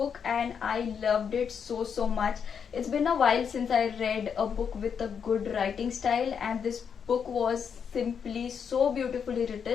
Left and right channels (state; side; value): quieter; right; 7.0 dB